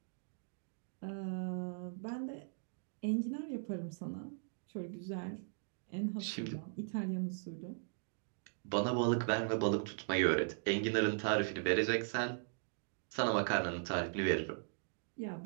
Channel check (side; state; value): left; silent; digital silence